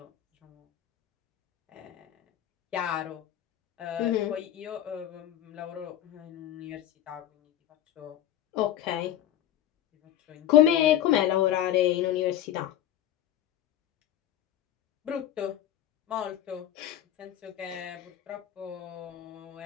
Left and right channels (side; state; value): right; quieter; 11.7 dB